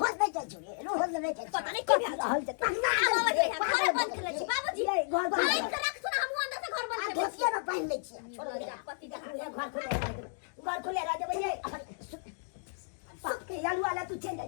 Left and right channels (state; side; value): silent; right; digital silence